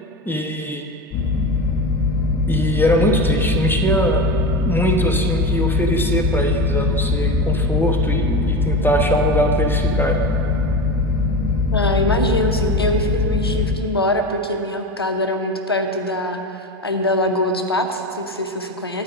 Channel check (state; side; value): normal; both; correlation 0.25